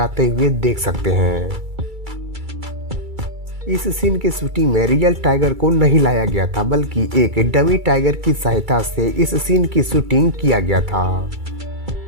हुए देख सकते हैं। इस सीन के शूटिंग में रियल टाइगर को नहीं लाया गया था बल्कि एक डमी टाइगर की सहायता से इस सीन की शूटिंग किया गया था।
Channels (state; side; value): late; left; 2.3 ms